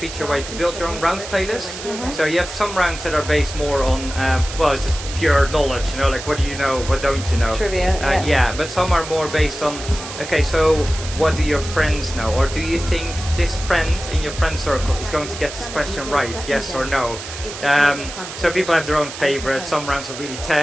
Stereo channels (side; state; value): right; noise; hiss, 10 dB below the sound